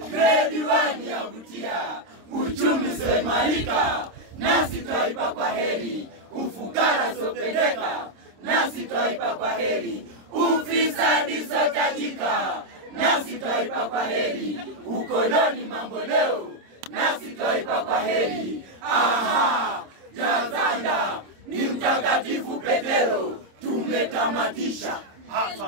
Grade 1 yavutia, uchumi soimarika, nasi twaipa kwa heri. Ufukara sopendeka, nasi twaipa kwa heri. Ufisadi sotajika, nasi twaipa kwa heri. Ukoloni mambo leo, nasi twaipa kwa heri. Aha, jazanda ni mtakatifu Petero, tumetamatisha.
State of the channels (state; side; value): late; left; 26 ms